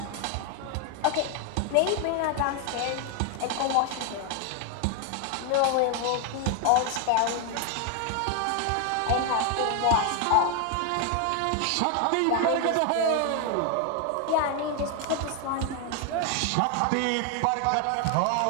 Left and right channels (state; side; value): different; both; correlation 0.01